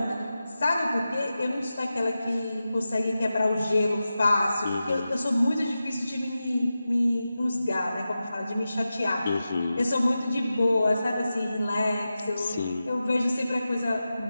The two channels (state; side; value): inverted; both; correlation -0.93